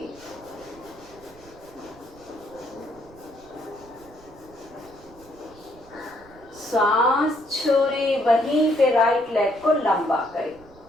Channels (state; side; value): noise; right; rumble, 23 dB below the sound